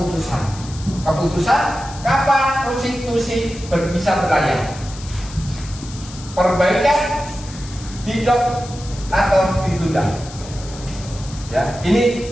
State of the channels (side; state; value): left; noise; hiss, 16 dB below the sound